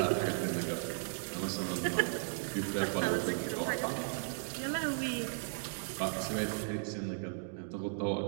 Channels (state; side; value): silent; left; digital silence